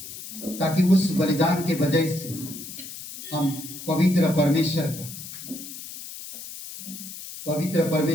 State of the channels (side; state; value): left; noise; hiss, 12 dB below the sound